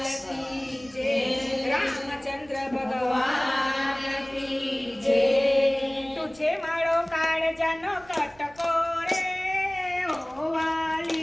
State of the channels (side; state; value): right; noise; rumble, 27 dB below the sound